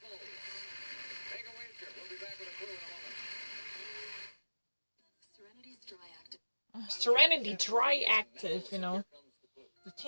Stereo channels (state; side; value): inverted; both; correlation -1.00